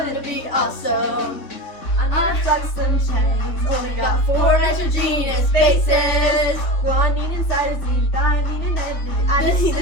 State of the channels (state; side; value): late; right; 3.2 ms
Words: be awesome. I've done some chains. Only got 4 nitrogenous bases. Guanine and cytosine, thymine and adenine. Adenine